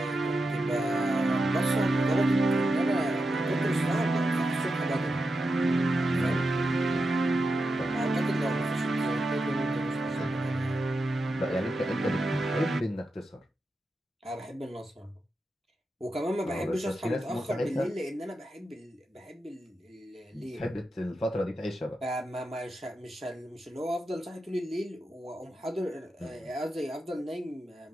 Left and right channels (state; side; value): normal; both; correlation 0.88